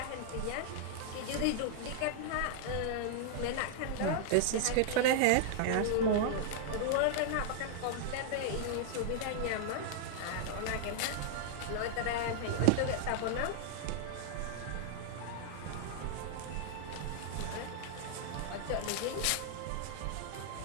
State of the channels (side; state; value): both; different; correlation -0.01